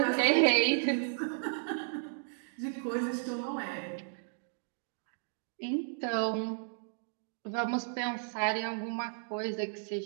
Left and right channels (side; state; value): left; silent; digital silence